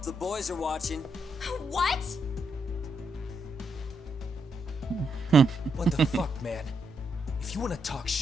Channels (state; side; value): normal; both; correlation 0.80